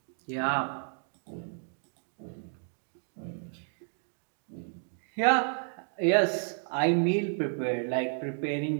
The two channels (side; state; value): left; silent; 57 dB below the other